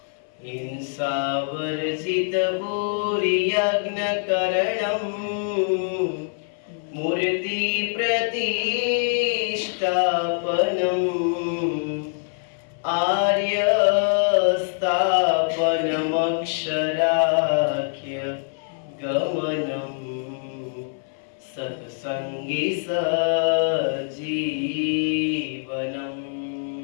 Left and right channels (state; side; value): silent; right; 58 dB below the other